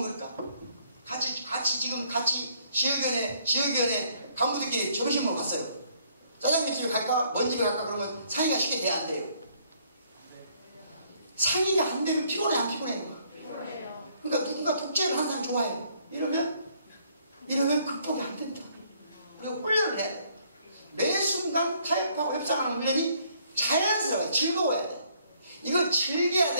같이 지역위원회 간부들끼리 점심 먹으러 갔어요. 짜장면 집에 갈까? 먼 집에 갈까? 그러면 상의가 쉽게 돼야 안 돼요. 상의가 안 되면 피곤해, 안 피곤해? 그러니까 누군가 독재를 하는 사람 좋아해요. 이러면 극복이 안 된다. 그리고 훈련을 해야 돼. 매 순간 타협하고 협상하는 훈련이 자연스러워요. 즐거워야 돼. 이거 즐겨야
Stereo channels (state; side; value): inverted; both; correlation -0.65